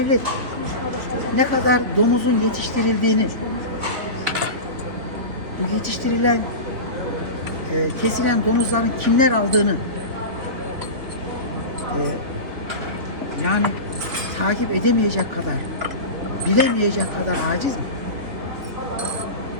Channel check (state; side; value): late; left; 3.8 ms